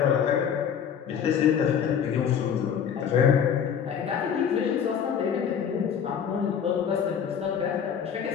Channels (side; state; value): right; quieter; 7.9 dB